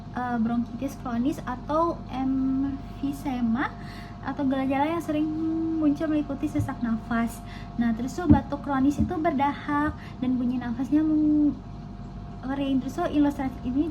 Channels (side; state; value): both; identical; correlation 1.00